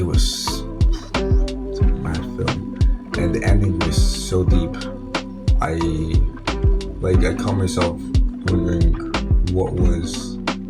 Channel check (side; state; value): both; identical; correlation 1.00